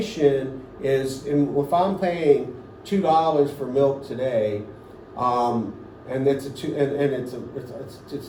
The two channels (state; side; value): identical; both; correlation 1.00